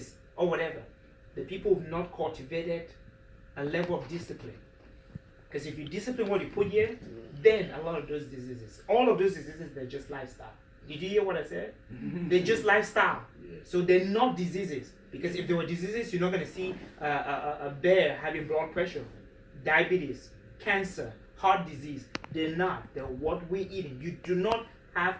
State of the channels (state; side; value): identical; both; correlation 1.00